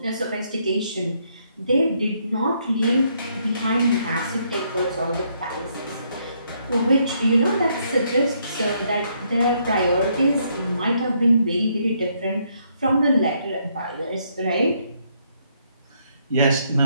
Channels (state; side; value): inverted; both; correlation -0.72